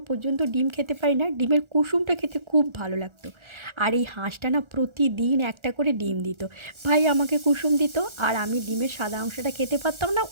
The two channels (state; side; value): late; left; 1.4 ms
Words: পর্যন্ত ডিম খেতে পারি না। ডিমের কুসুমটা খেতে খুব ভালো লাগতো। আর এই হাঁসটা না প্রতিদিন একটা করে ডিম দিত। ভাই আমাকে কুসুম দিত, আর আমি ডিমের সাদা অংশটা খেতে পারতাম না,